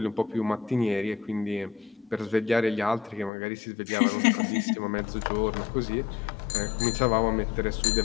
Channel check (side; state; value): right; drops out; at 3.3 s